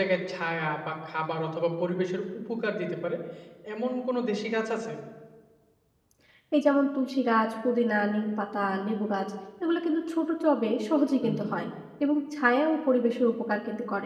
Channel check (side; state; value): both; identical; correlation 1.00